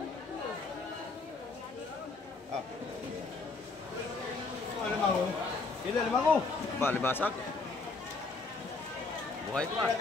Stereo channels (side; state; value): right; quieter; 3.9 dB